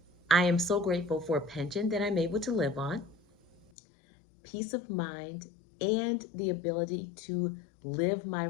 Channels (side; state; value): right; drops out; at 3.7 s